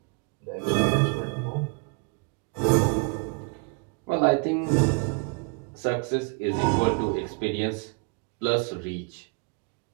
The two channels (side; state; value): left; quieter; 33.4 dB